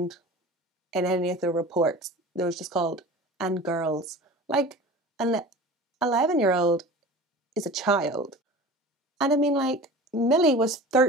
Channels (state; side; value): normal; both; correlation 0.37